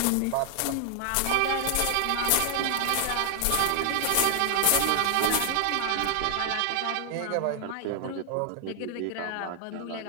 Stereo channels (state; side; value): different; both; correlation 0.00